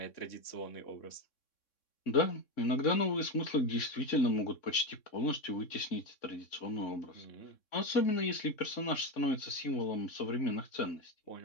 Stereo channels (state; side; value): late; right; 3.6 ms